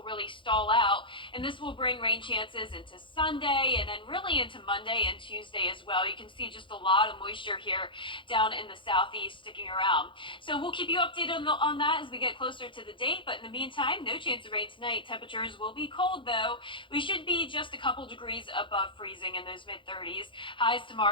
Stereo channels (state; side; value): late; right; 0.24 ms